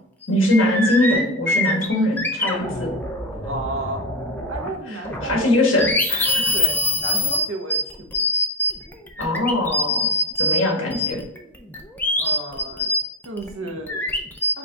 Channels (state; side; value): normal; both; correlation 0.15